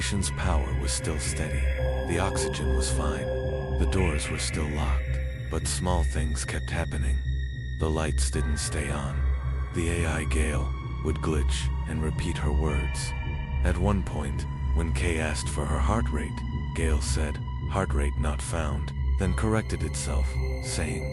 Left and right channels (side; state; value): both; identical; correlation 1.00